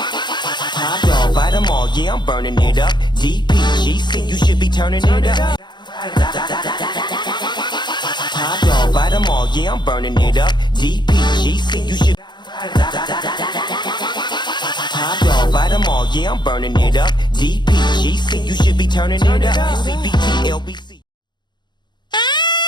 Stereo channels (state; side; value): late; right; 0.21 ms